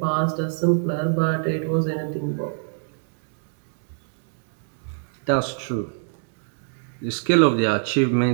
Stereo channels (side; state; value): left; silent; digital silence